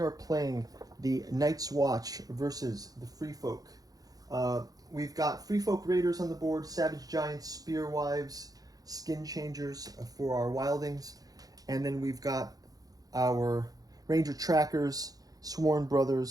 playing the Nightswatch versus the Freefolk. We've got Freefolk Raiders on the board, Savage Giants, Spearwives, Skin Changers for our Wildings, and then we've got our Ranger Trackers, Sworn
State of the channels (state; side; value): late; left; 0.18 ms